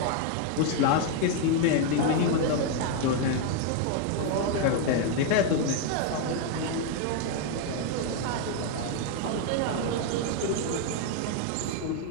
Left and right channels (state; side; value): different; both; correlation 0.00